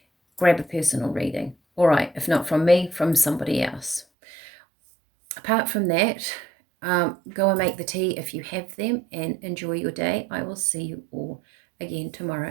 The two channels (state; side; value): drops out; left; at 4.0 s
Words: grab a personal reading. All right, if not from me, from somebody else. Apart from that, go and make the tea if you have them, and enjoy your day. I will see you all again